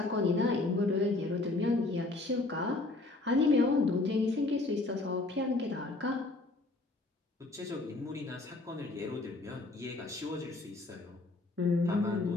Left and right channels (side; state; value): right; quieter; 3.1 dB